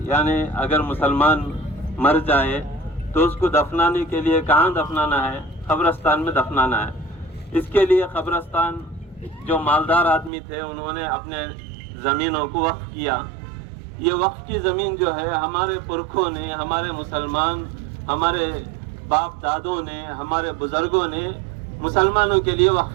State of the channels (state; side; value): drops out; left; at 10.3 s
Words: یعنی اگر مسلمان مر جائے تو اس کو دفنانے کے لیے کہاں دفنانا ہے؟ قبرستان میں دفنانا ہے۔ اس کے لیے قبرستان جو مالدار آدمی تھے انہوں نے اپنے زمینوں کو وقف کیا۔ یہ وقف کی زمین جو ہے ہمارے پرکھوں نے، ہمارے مسلمان، ہمارے باپ دادوں نے، ہمارے بزرگوں نے مسلمانوں کے لیے